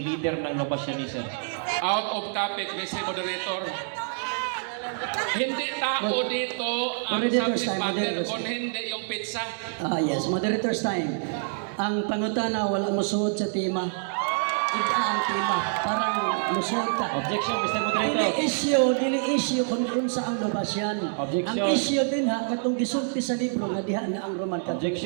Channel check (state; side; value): silent; left; digital silence